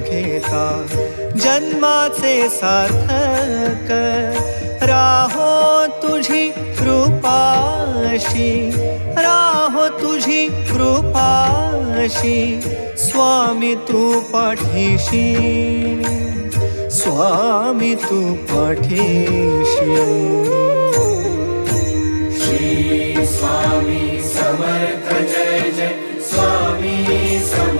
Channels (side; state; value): both; inverted; correlation -1.00